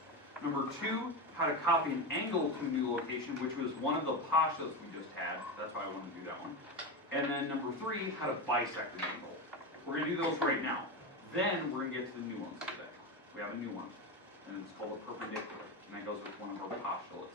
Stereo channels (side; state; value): both; normal; correlation 0.17